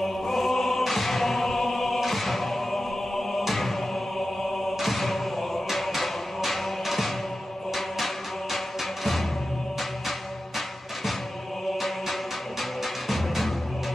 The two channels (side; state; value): both; normal; correlation 0.93